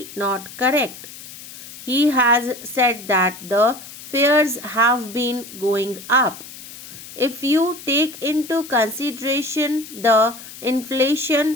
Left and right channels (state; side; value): noise; left; hiss, 15 dB below the sound